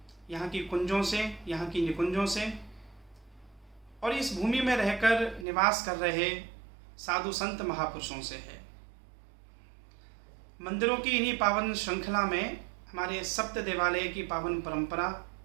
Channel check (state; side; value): drops out; left; at 5.5 s